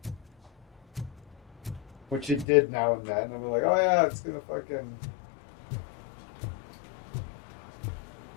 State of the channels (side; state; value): right; drops out; at 2.5 s